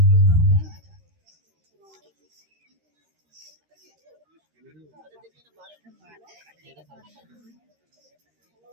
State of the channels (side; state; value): left; late; 13 ms